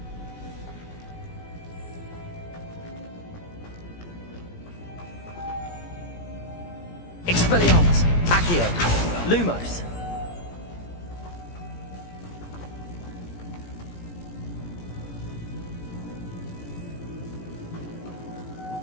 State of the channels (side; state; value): right; late; 17 ms